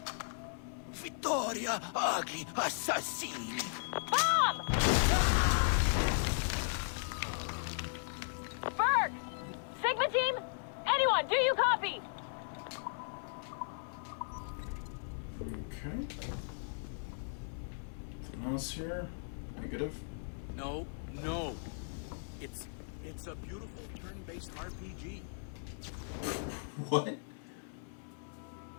Vittoria agli assassini. Bomb! Berg! Sigma team? Anyone, do you copy? Okay. Something else here? Negative. No. It's a beautiful turn-based RPG. What?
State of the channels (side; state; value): right; silent; 53 dB below the other